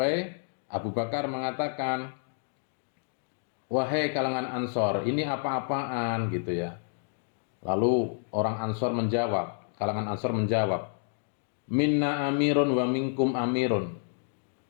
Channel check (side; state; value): right; silent; 58 dB below the other